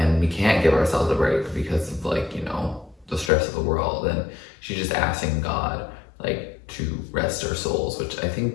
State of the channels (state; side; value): drops out; right; at 3.3 s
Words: we can't give ourselves a break because of like, you know, the stress of the world. And she's just asking God like to rest our souls, which I think